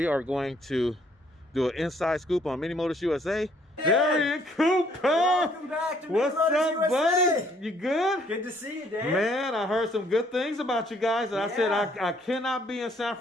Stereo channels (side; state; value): both; normal; correlation 0.65